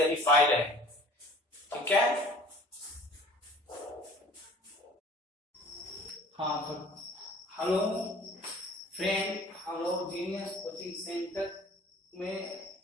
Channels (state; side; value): normal; both; correlation 0.49